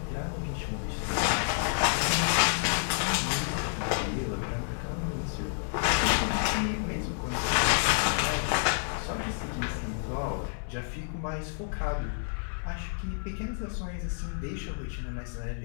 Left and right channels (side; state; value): right; silent; digital silence